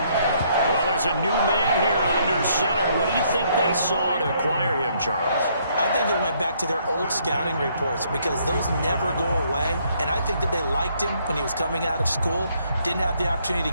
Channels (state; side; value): inverted; both; correlation -0.68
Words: Well, there's a new man here under center. What do you think they saw to acquire him, Charles? I I think they went back to their old scouting reports because those never go away. And I think that they liked him when he was coming out of school, didn't have the opportunity